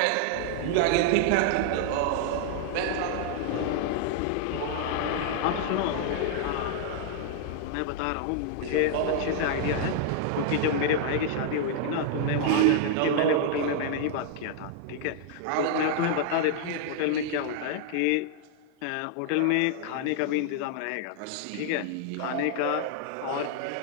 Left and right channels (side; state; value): both; different; correlation 0.00